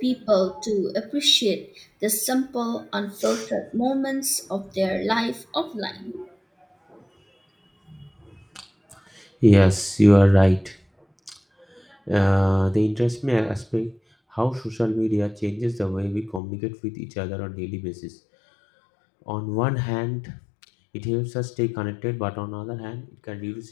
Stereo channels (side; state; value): right; drops out; at 16.4 s